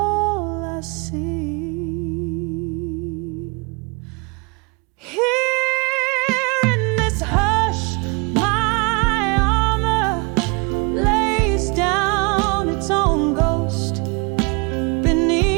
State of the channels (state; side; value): quieter; left; 30.7 dB